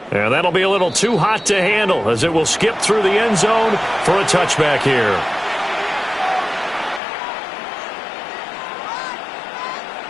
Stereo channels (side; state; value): right; drops out; at 7.0 s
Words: And that'll be a little too hot to handle as it will skip through the end zone for a touchback here.